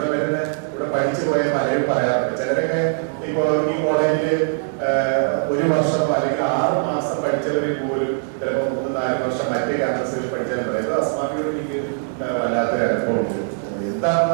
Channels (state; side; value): silent; left; digital silence